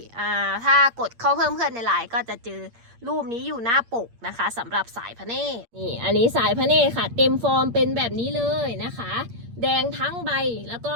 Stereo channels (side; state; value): left; late; 8.6 ms